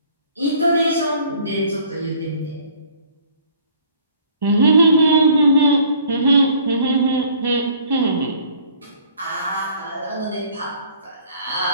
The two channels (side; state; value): both; inverted; correlation -0.55